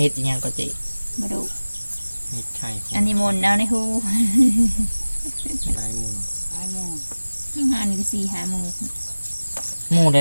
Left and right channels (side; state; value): both; inverted; correlation -1.00